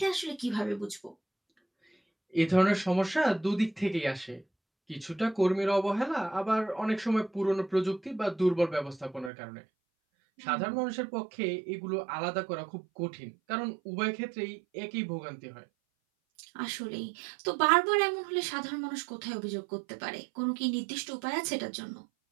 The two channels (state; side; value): drops out; left; at 9.3 s